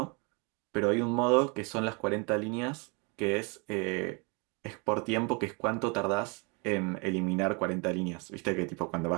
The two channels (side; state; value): left; quieter; 31.6 dB